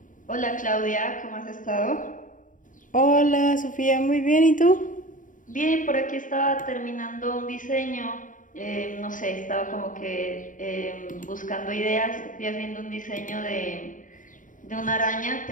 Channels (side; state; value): right; late; 0.38 ms